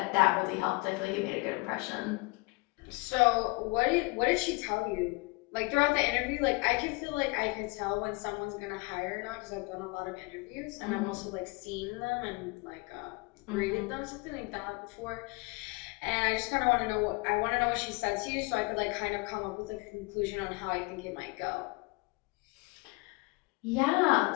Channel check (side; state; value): right; quieter; 26.6 dB